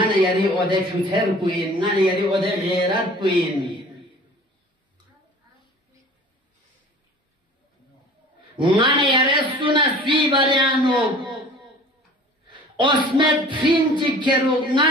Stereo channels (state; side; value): normal; both; correlation 0.45